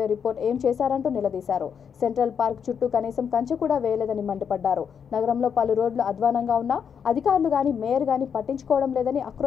రిపోర్ట్ ఏం చేశారంటూ నిలదీశారు. సెంట్రల్ పార్క్ చుట్టూ కనీసం కంచె కూడా వేయలేదని మండిపడ్డారు. నగరంలో పలు రోడ్లు అధ్వానంగా ఉన్నా అధికారులు గాని మేయర్ గాని పట్టించుకోవడం లేదని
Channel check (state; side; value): quieter; right; 7.2 dB